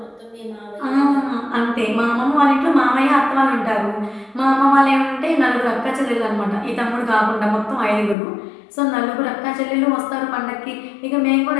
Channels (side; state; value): right; drops out; at 8.2 s